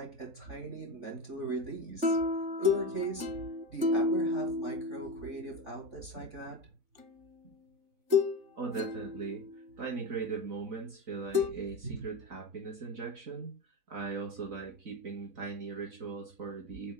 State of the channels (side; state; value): left; late; 4.0 ms